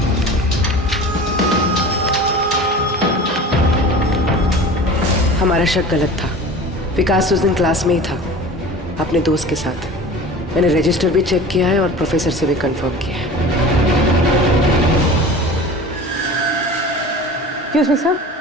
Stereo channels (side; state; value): both; normal; correlation 0.38